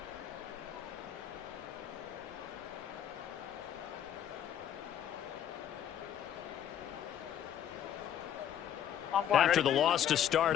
After the loss to start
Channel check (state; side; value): quieter; right; 10.1 dB